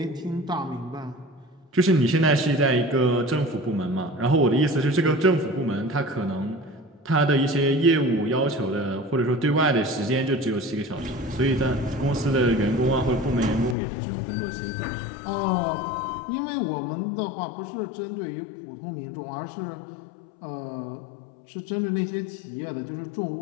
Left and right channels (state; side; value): drops out; right; at 13.8 s